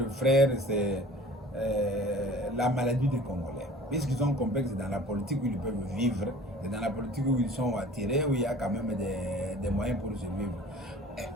frère, c'est la maladie des Congolais. Puisqu'ils sont complexes dans la politique où ils peuvent vivre, et dans la politique où ils sont attirés, où il y a quand même des moyens pour survivre.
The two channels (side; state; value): both; normal; correlation 0.46